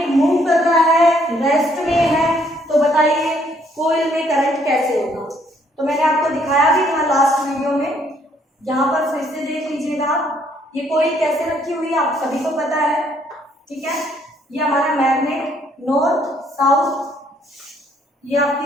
मूव कर रहा है, रेस्ट में है, तो बताइए कॉइल में करंट कैसे होगा। तो मैंने आपको दिखाया भी था लास्ट वीडियो में, यहाँ पर फिर से देख लीजिएगा आप। ये कॉइल कैसे रखी हुई है आप सभी को पता है, ठीक है। ये हमारा मैग्नेट नॉर्थ साउथ, ये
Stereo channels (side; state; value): both; normal; correlation 0.67